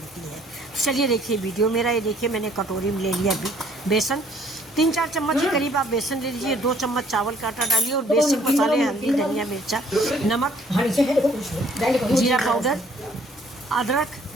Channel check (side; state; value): both; normal; correlation 0.61